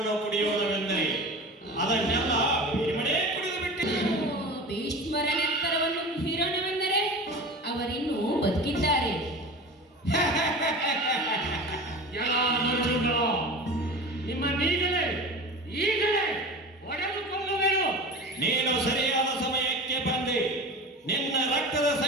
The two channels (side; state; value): both; normal; correlation 0.33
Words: ಕುಡಿಯೋದವೆಂದರೆ ಅದನ್ನೆಲ್ಲ ಭೀಮನೇ ಕುಡಿದು ಬಿಟ್ಟಿದ್ದ. ಭೀಷ್ಮರ ನೆತ್ತರವನ್ನು ಹೀರೋಣವೆಂದರೆ ಅವರಿನ್ನೂ ಬದುಕಿದ್ದಾರೆ. ನಿಮ್ಮ ಈಗಲೇ ಒಡೆದು ಕೊಲ್ಲುವೆನು. ನೀನು ಸರಿಯಾದ ಸಮಯಕ್ಕೆ ಬಂದೆ. ನಿನ್ನ ರಕ್ತದ